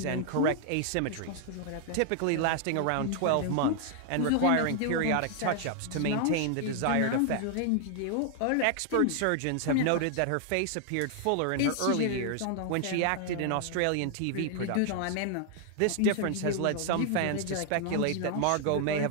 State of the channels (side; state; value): both; different; correlation 0.00